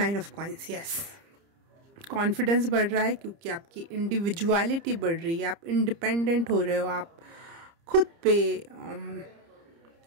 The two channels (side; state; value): left; late; 30 ms